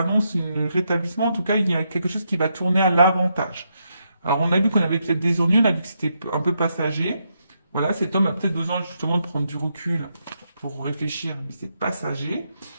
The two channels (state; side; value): inverted; both; correlation -0.80